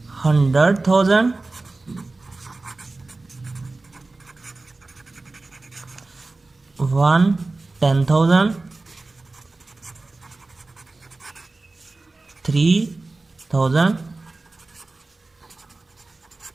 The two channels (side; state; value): left; quieter; 3.3 dB